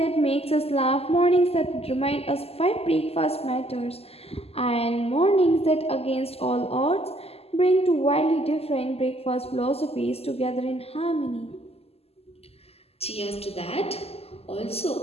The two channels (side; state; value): right; late; 0.29 ms